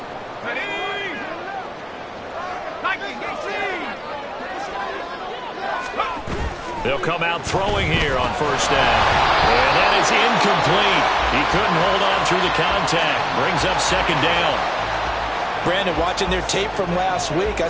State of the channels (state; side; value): identical; both; correlation 1.00